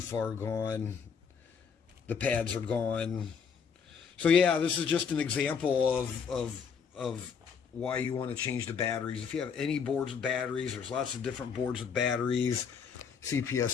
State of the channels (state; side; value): quieter; right; 6.5 dB